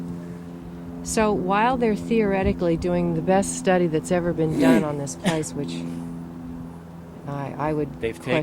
So while they're theoretically doing the best study that's ever been done on this place, which I would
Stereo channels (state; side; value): identical; both; correlation 1.00